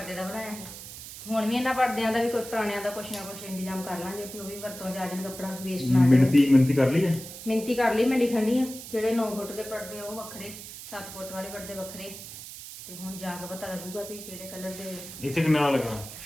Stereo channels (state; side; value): noise; right; hiss, 12 dB below the sound